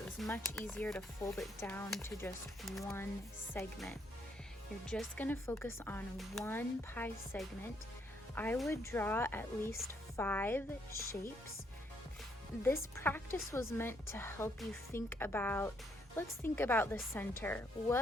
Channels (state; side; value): normal; both; correlation 0.72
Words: was much easier to fold it down to just one segment. You're just going to focus on one pie segment. I would draw at least 5 shapes. This practice was meant to help you think about, let's think about the center.